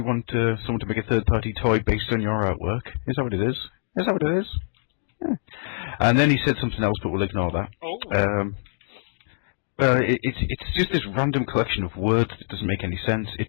want someone to make a third-party toy based on your artwork? Is that what it is? Is that what it is? Yeah. And then he said something else, but we'll ignore that. It's just this random collection of words that doesn't make any sense.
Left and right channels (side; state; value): right; silent; digital silence